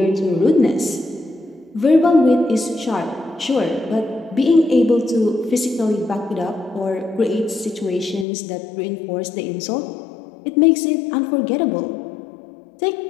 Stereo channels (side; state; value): right; drops out; at 8.2 s